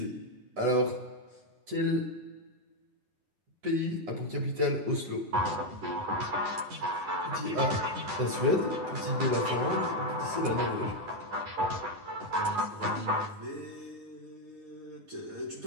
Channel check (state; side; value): late; left; 10 ms